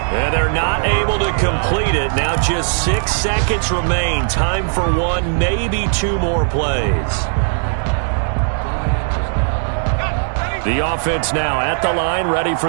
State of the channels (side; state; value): left; silent; 68 dB below the other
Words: And they're not able to complete it. Now just 6 seconds remain. Time for one, maybe 2 more plays. The offense now at the line, ready